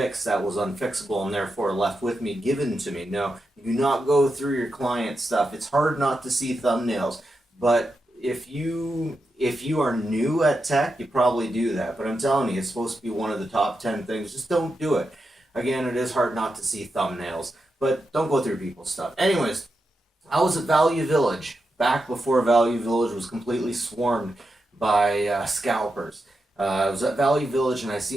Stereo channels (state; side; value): normal; both; correlation 0.87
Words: that was unfixable and therefore left with me, given to me. No, you do not go through your client stuff. It's hard not to see thumbnails, but if you are new at tech, you probably do that. But I'm telling you, it's supposed to be one of the top 10 things. Just don't do it. Again, it is hard not to see thumbnails, but don't go through people's stuff. Anyways, I was at Value Village back before Value Village was completely swarmed by scalpers. I was at Value Village and I